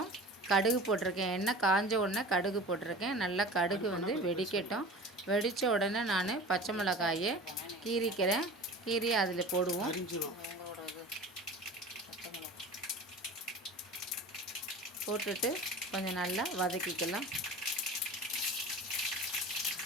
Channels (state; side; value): normal; both; correlation 0.37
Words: கடுகு போட்டிருக்கேன், எண்ணெய் காஞ்ச உடனே கடுகு போட்டிருக்கேன். நல்லா கடுகு வெடிக்கட்டும். வெடித்த உடனே நான் பச்சை மிளகாயை கீறிக்கிறேன். கீறி அதில் போடுவோம். போட்டுட்டு கொஞ்சம் நல்லா வதக்கிக்கலாம்.